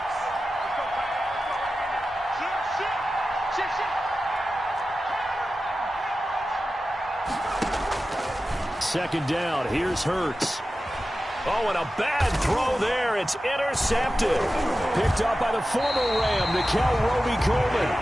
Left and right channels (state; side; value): normal; both; correlation 0.94